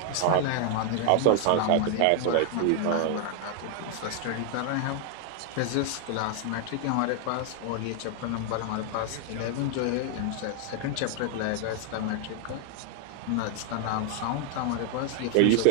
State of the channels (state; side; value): different; both; correlation 0.00